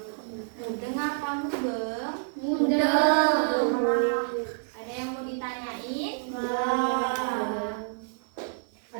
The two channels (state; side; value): silent; left; 59 dB below the other